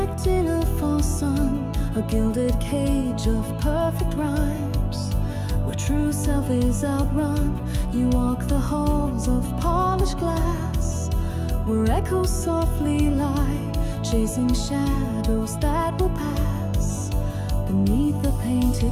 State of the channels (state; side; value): identical; both; correlation 1.00